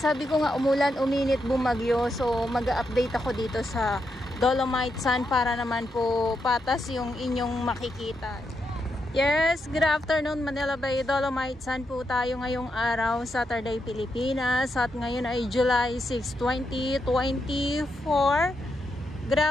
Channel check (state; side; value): normal; both; correlation 0.83